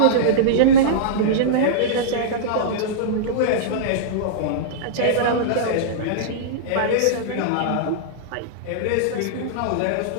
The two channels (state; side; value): different; both; correlation -0.03